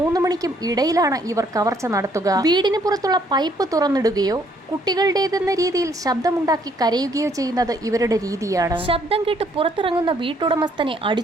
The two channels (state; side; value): normal; both; correlation 0.66